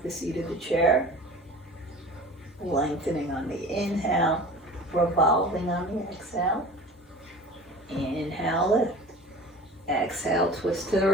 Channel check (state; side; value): normal; both; correlation 0.41